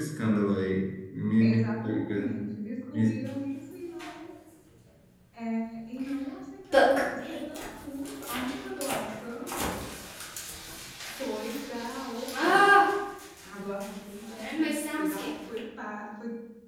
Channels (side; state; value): both; identical; correlation 1.00